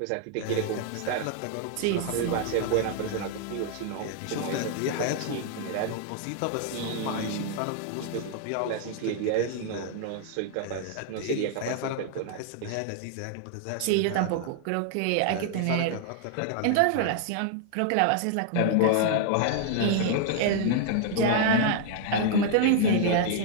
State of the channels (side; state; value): both; different; correlation -0.01